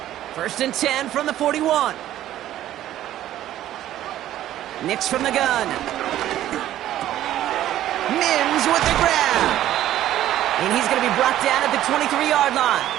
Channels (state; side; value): quieter; left; 12.9 dB